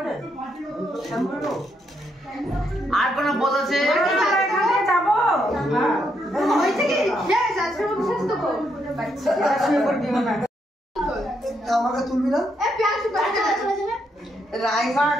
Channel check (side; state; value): both; normal; correlation 0.77